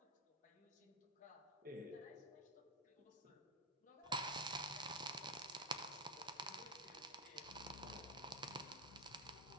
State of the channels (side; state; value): both; normal; correlation 0.08